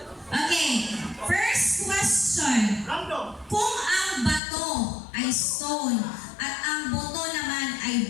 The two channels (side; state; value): right; drops out; at 4.4 s